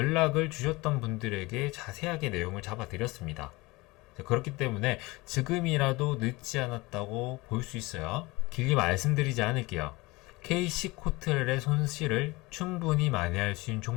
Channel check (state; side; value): quieter; right; 22.7 dB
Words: 주셨던 분들에게 자세하게 내용을 잡아드렸습니다. 그렇기 때문에 지금이라도 늦지 않았다고 볼 수 있어요. 길게 말씀드리지 않을게요. KC코트렐의 손실을 충분히 만회할 수 있는